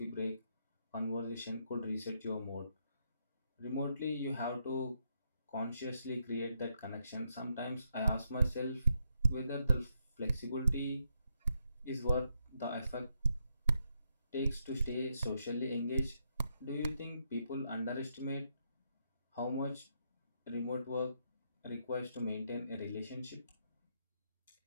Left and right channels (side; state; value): both; inverted; correlation -0.79